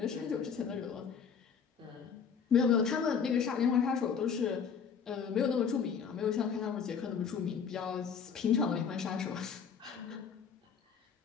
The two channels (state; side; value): quieter; right; 6.7 dB